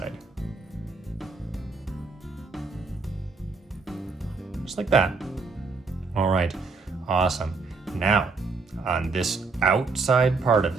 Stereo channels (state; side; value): quieter; left; 4.2 dB